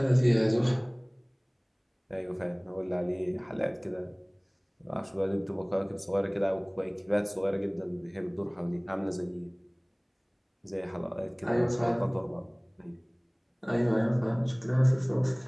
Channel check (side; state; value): both; identical; correlation 1.00